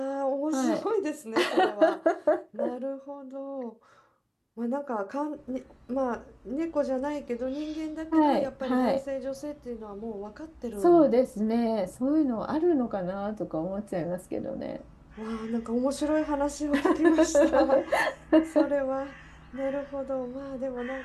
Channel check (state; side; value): identical; both; correlation 1.00